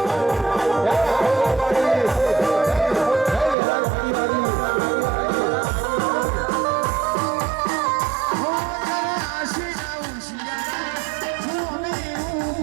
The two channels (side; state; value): left; drops out; at 3.6 s